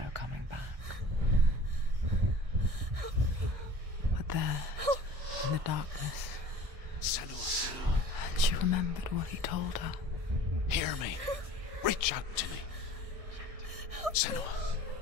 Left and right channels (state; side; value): late; left; 1.6 ms